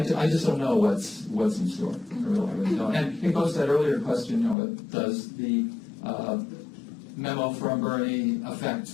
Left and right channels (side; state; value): right; drops out; at 4.5 s